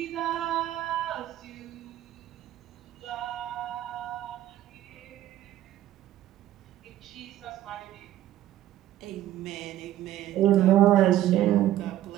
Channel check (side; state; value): left; quieter; 13.3 dB